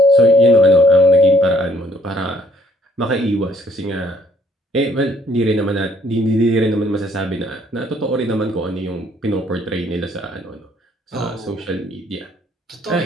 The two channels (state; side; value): normal; both; correlation 0.64